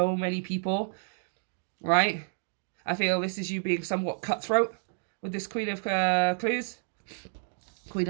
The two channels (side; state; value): left; silent; digital silence